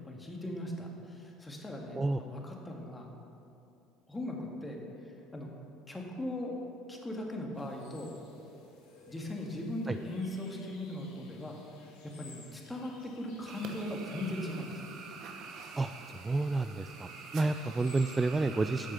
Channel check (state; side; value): normal; both; correlation 0.80